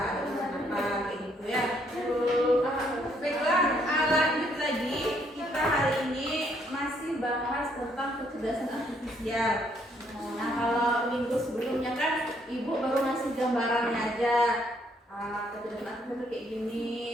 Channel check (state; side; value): normal; both; correlation 0.69